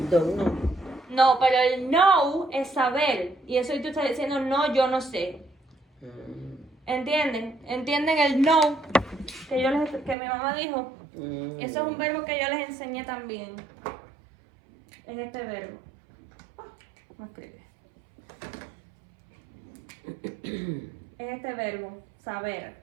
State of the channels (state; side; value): drops out; left; at 10.2 s